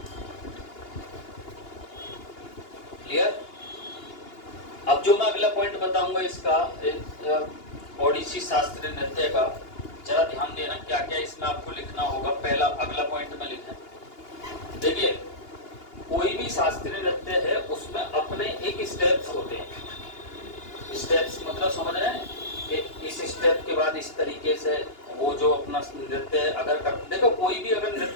क्लियर? अब जो मैं अगला पॉइंट बताऊंगा इसका ओडिसी शास्त्रीय नृत्य का, जरा ध्यान देना क्या क्या इसमें आपको लिखना होगा। पहला अगला पॉइंट में लिखें। देखिए कोई भी शास्त्रीय नृत्य है उसमें अपने एक स्टेप्स होते हैं। स्टेप्स मतलब समझ रहे हैं कि इस स्टेप के बाद इस तरीके से वो जो अपना नृत्य अगर कर, देखो कोई भी अगर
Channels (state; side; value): late; right; 2.8 ms